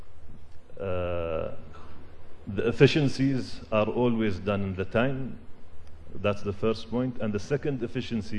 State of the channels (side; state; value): both; identical; correlation 1.00